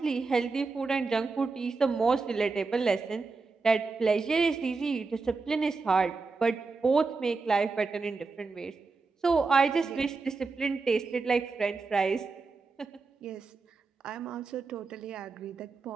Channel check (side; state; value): left; quieter; 4.2 dB